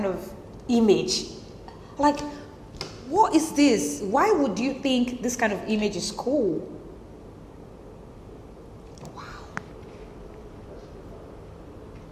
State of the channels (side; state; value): both; identical; correlation 1.00